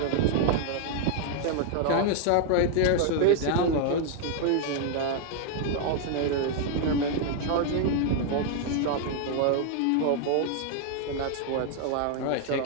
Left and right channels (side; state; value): both; different; correlation 0.00